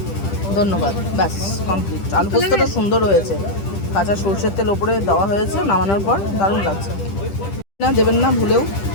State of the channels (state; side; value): late; right; 10 ms